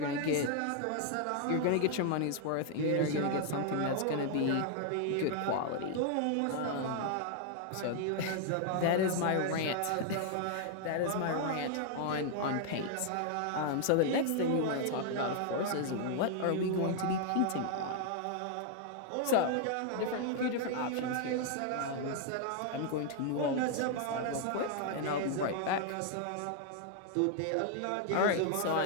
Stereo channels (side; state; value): both; different; correlation 0.00